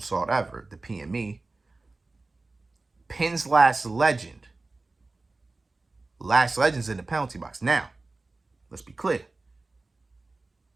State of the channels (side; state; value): left; quieter; 3.4 dB